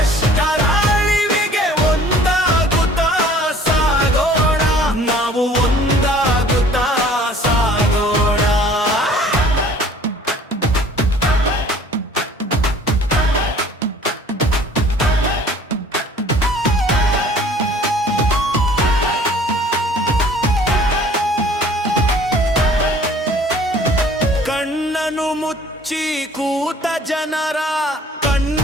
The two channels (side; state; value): both; normal; correlation 0.52